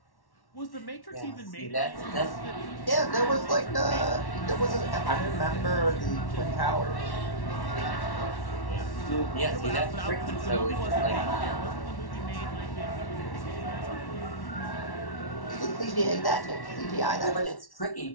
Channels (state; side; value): late; right; 1.1 ms